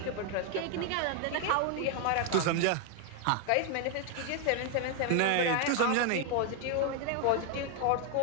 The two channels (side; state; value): both; different; correlation 0.00